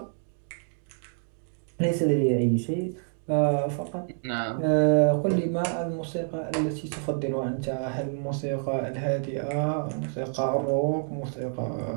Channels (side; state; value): left; silent; digital silence